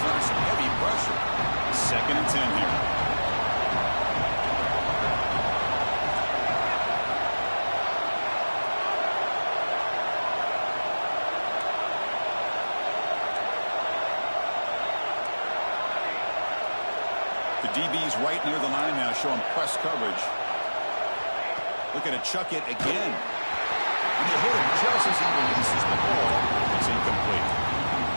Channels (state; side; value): inverted; both; correlation -1.00